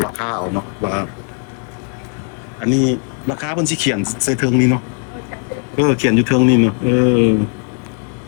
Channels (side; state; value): right; quieter; 36.9 dB